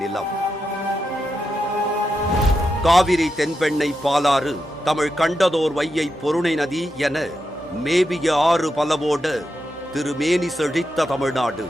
நிலம். காவிரி, தென்பெண்ணை, பாலாறு, தமிழ் கண்டதோர் வையை, பொருணை நதி என மேவிய ஆறு பலவோட திருமேனி செழித்த தமிழ்நாடு.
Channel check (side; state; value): both; normal; correlation 0.86